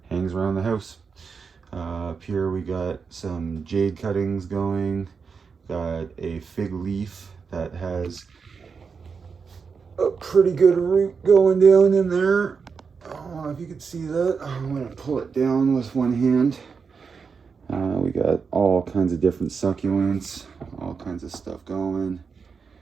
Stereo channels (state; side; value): quieter; left; 5.5 dB